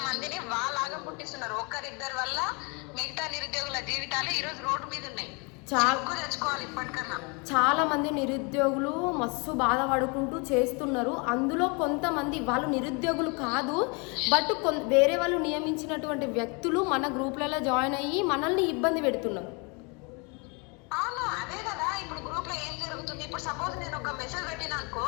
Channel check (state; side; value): quieter; right; 31.5 dB